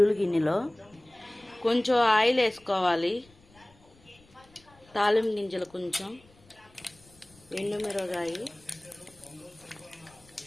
గిన్నెలో. కొంచెం ఆయిల్ వేసుకోవాలి, తాలింపు గింజలు, కొంచెం ఎండుమిరగాయ,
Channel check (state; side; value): noise; left; rumble, 28 dB below the sound